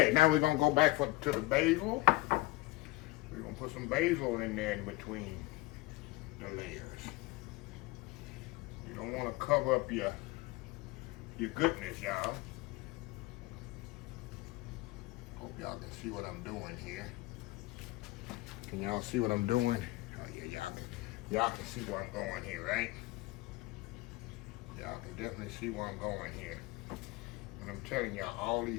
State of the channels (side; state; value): right; quieter; 20.3 dB